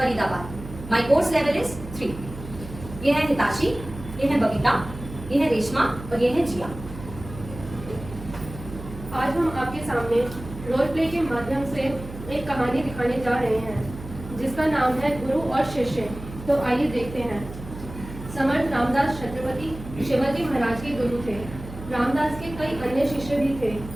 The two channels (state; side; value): noise; right; hum, 12 dB below the sound